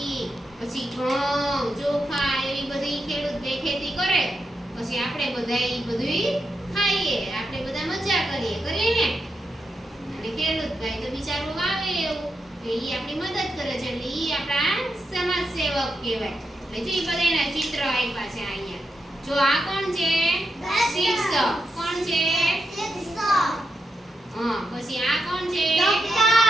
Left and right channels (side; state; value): both; normal; correlation 0.85